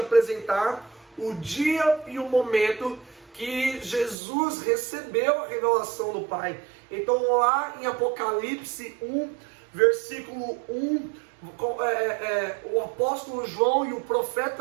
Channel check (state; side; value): drops out; left; at 4.2 s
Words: o dia e o momento que Jesus recebeu a revelação do Pai. Então lá em Apocalipse 1, versículo 1, o apóstolo João e o